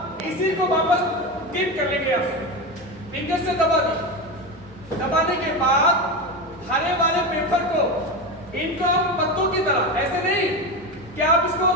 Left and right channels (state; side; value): normal; both; correlation 0.19